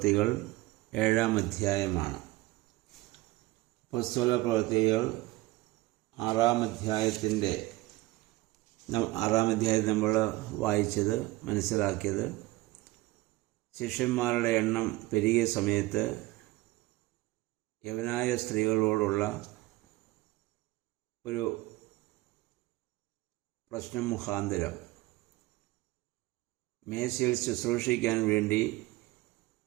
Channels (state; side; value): quieter; left; 19.3 dB